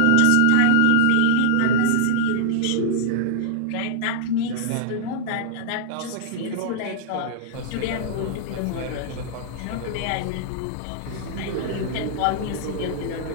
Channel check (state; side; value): different; both; correlation -0.01